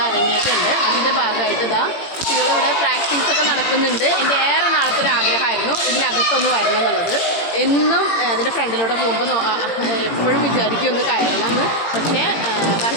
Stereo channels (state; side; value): late; right; 18 ms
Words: അരങ്ങേറ്റമുണ്ട്. അതിൻ്റെ ഭാഗമായിട്ട് കുട്ടികളിവിടെ പ്രാക്ടീസൊക്കെ നടക്കുന്നുണ്ട്. എൻ്റെ ഏറെ നാളത്തെ ഒരു ആഗ്രഹമായിരുന്നു ഇതിനകത്തൊന്ന് വരണം എന്നുള്ളത്. എന്നും അതിൻ്റെ ഫ്രണ്ടിലൂടെ പോകുമ്പോൾ എപ്പോഴും വിചാരിക്കും ഒന്ന് കയറണം എന്ന്. പക്ഷേ